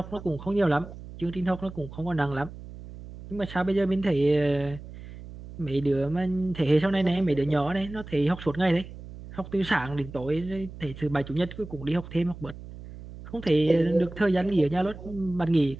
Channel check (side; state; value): right; noise; hum, 14 dB below the sound